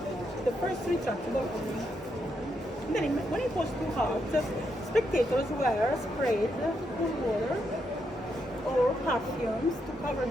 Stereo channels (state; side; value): normal; both; correlation 0.80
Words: The first retractable. Then when it was too hot, spectators were sprayed with water or perfumes to cover